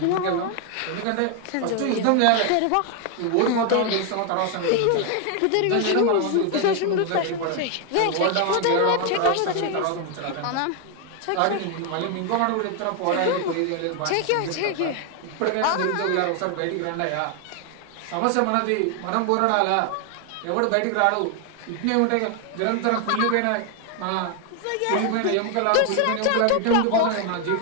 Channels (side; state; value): both; different; correlation 0.01